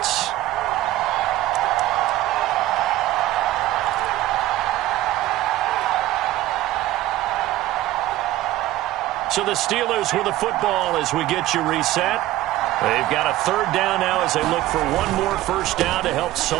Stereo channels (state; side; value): quieter; left; 15.7 dB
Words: So the Steelers with the football as we get you reset. They've got a 3rd down now as they look for one more first down to help